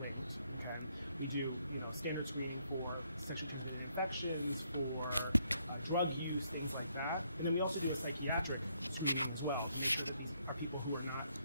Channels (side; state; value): both; inverted; correlation -0.73